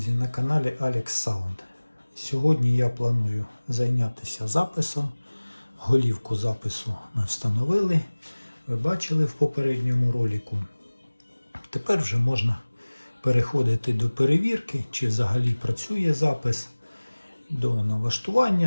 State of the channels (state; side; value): inverted; both; correlation -1.00